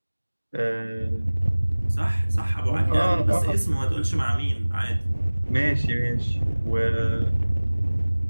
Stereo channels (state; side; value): inverted; both; correlation -1.00